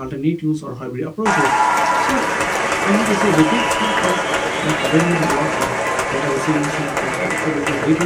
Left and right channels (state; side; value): identical; both; correlation 1.00